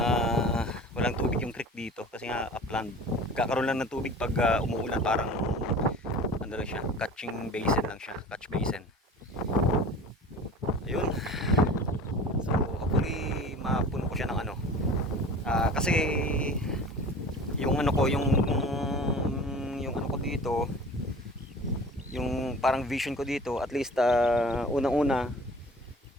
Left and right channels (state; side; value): normal; both; correlation 0.41